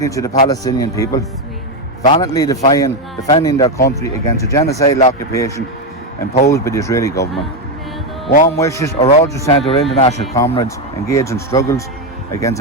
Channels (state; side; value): normal; both; correlation 0.07